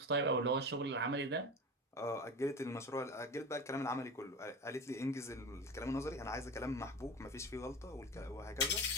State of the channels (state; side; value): normal; both; correlation 0.30